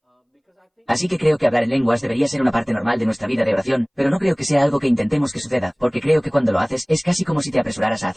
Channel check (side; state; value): both; identical; correlation 1.00